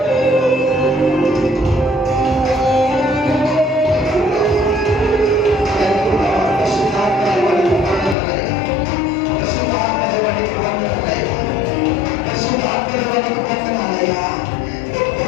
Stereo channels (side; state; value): right; drops out; at 8.2 s